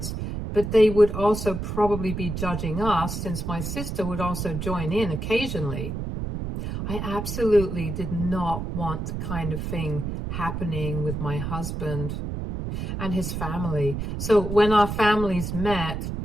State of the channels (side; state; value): right; noise; rumble, 4 dB below the sound